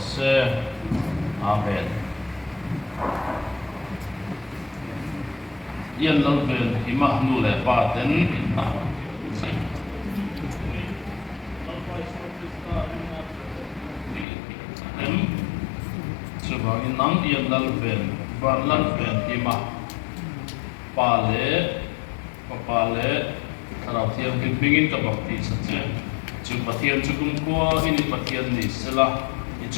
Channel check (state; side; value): drops out; right; at 14.2 s